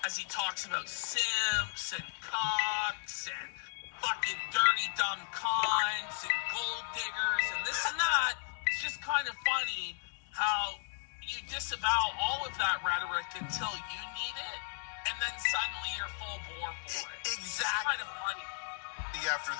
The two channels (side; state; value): right; silent; 54 dB below the other